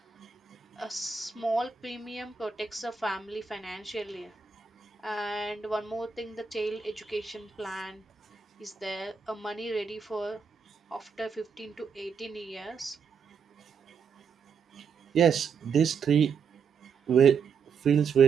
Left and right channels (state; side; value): quieter; left; 6.1 dB